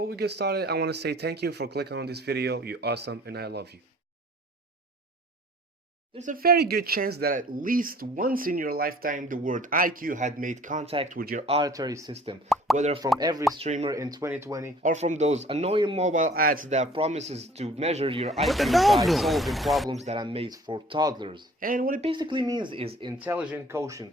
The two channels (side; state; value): both; normal; correlation 0.52